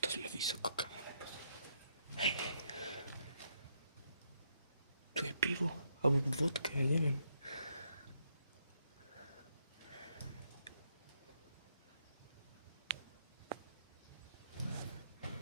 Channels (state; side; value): inverted; both; correlation -0.76